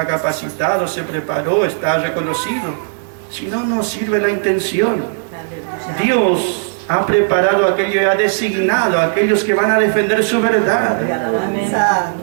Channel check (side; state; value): left; silent; digital silence